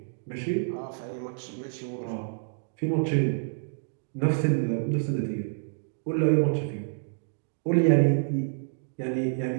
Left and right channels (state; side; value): silent; left; digital silence